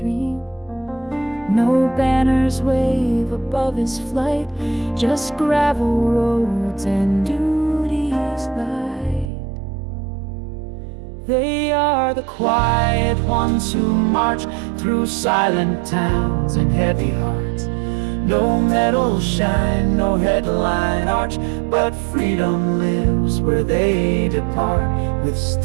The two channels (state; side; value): drops out; left; at 9.3 s